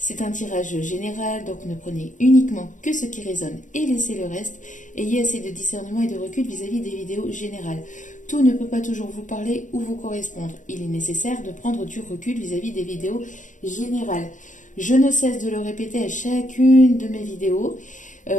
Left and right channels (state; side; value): late; right; 0.37 ms